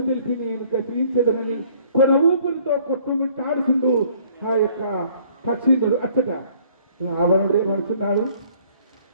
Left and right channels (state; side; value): inverted; both; correlation -0.59